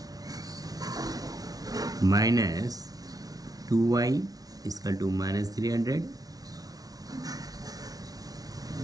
minus 2y is equal to minus 300,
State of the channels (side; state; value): left; late; 0.18 ms